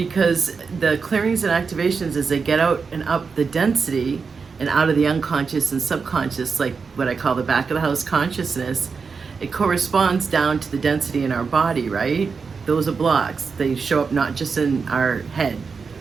the clearings and activations, as they get out and up the density and out of the unconscious and subconscious, like what I call the back of the house consciousness, it corresponds down to the density in our body, right? Those are blocks. They show up not just in our head,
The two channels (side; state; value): left; quieter; 5.2 dB